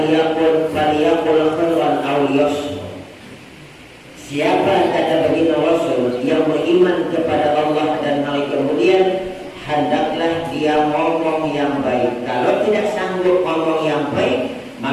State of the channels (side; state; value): both; identical; correlation 1.00